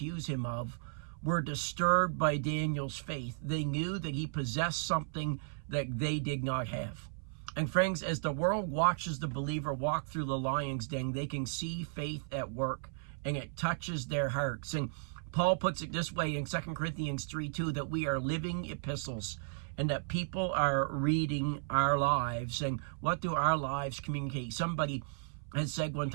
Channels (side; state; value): left; silent; 55 dB below the other